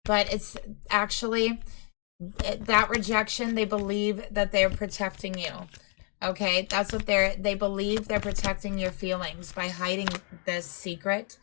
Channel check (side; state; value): right; quieter; 35.1 dB